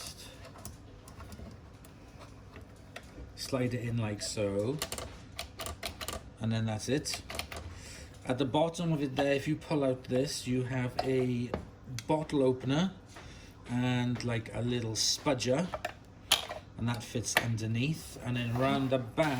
slide it in like so, and then that's it. At the bottom of it there, if you pull out this, you have a bottle opener and like a little spudger, and that fits underneath. And then around the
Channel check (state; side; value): identical; both; correlation 1.00